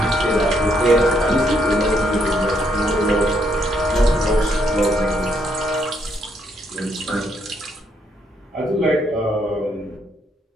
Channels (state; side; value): normal; both; correlation 0.73